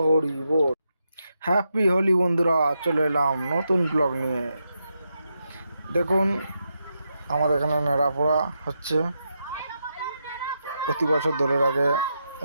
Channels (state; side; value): inverted; both; correlation -0.84